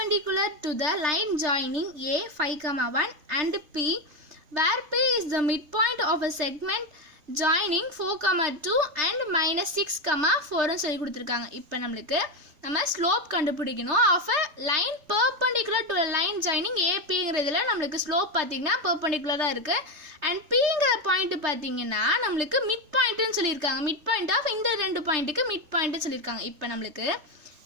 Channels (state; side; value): late; left; 3.3 ms